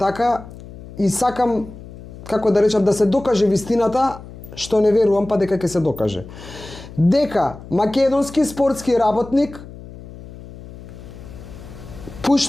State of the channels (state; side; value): noise; left; hum, 16 dB below the sound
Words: и сакам, како да речам, да се докаже вистината, што не верувам па дека ќе се докаже. Дека македонски спортски работник